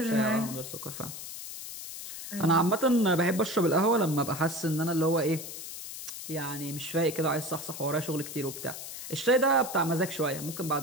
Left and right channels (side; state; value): left; noise; hiss, 10 dB below the sound